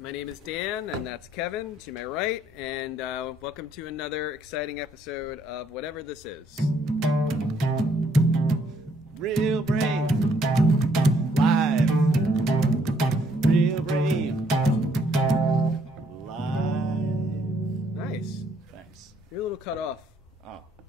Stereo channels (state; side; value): normal; both; correlation 0.68